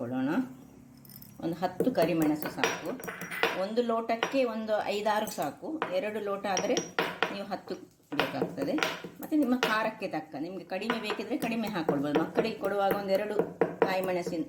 ಒಂದು 10 ಕರಿಮೆಣಸು ಸಾಕು. 1 ಲೋಟಕ್ಕೆ ಒಂದು 5-6 ಸಾಕು. 2 ಲೋಟ ಆದರೆ ನೀವು 10 ಬೇಕಾಗ್ತದೆ. ಮತ್ತು ನಿಮ್ಮ ಖಾರಕ್ಕೆ ತಕ್ಕ, ನಿಮಗೆ ಕಡಿಮೆ ಬೇಕಿದ್ರೆ ಕಡಿಮೆ ಹಾಕ್ಕೊಳ್ಬೋದು. ಮಕ್ಕಳಿಗೆ ಕೊಡುವಾಗ 1-2 ಕಾಯಿ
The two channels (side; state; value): both; identical; correlation 1.00